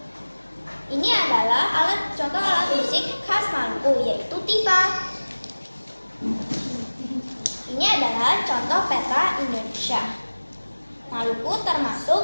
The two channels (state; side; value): inverted; both; correlation -1.00